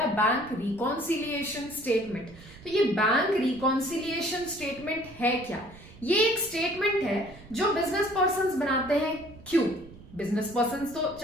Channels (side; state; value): right; noise; rumble, 19 dB below the sound